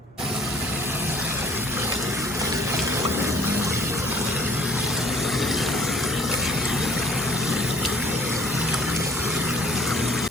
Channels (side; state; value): both; normal; correlation 0.54